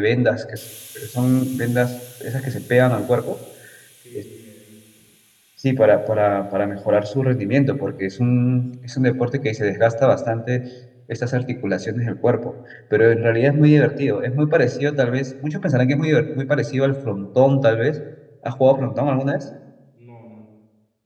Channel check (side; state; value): both; identical; correlation 1.00